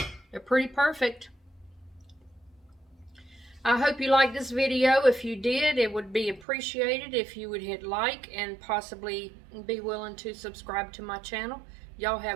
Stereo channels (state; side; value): drops out; left; at 6.5 s